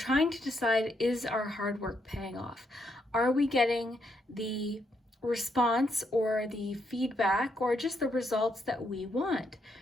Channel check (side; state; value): both; normal; correlation 0.77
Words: to decide, is our hard work paying off? Are we getting the response or the feedback or just the results that we want?